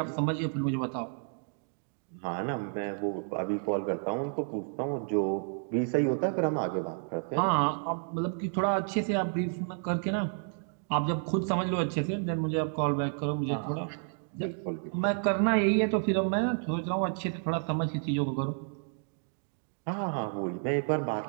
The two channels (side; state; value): left; silent; 55 dB below the other